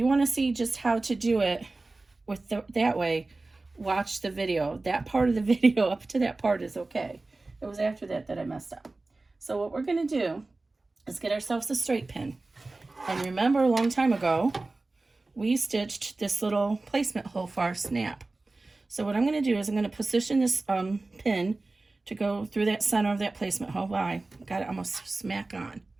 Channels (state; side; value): quieter; left; 3.3 dB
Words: want to see just how to do it with that way, watch the video. That part of the video up to that part is okay. It was after that that I messed up. So what we're going to do is get ourselves a straight pin. And remember, a long time ago, we stitched this little placement hole for our snap. So what I'm going to do is I'm going to position this pin to go through that center of that placement hole. Wow, I got it almost smack on.